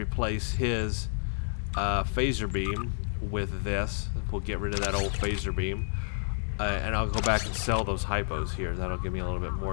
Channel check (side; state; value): right; silent; digital silence